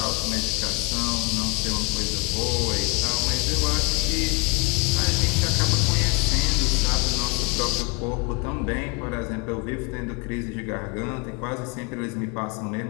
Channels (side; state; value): right; quieter; 29.4 dB